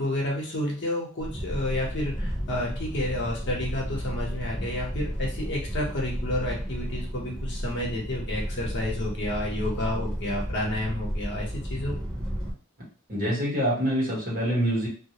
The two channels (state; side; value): normal; both; correlation 0.53